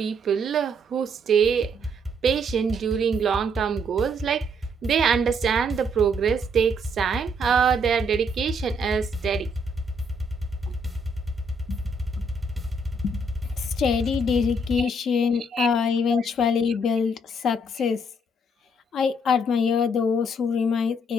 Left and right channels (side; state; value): both; normal; correlation 0.70